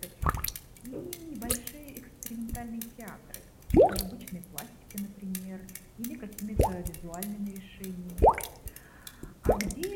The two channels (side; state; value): both; identical; correlation 1.00